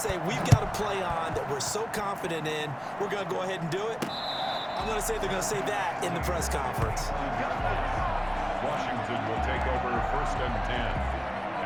say, we've got a play on that we're so confident in, we're going to go ahead and do it? I'm going to say they're going to say that in the press conference. Washington will take over 1st and 10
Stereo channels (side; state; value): both; identical; correlation 1.00